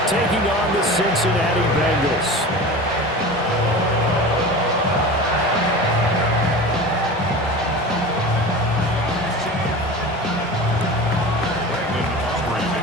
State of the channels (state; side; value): normal; both; correlation 0.33